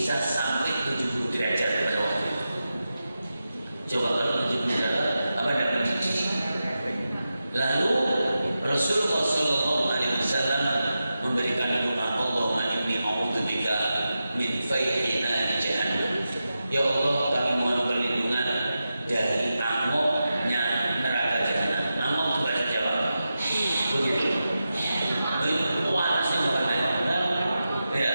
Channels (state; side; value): inverted; both; correlation -0.91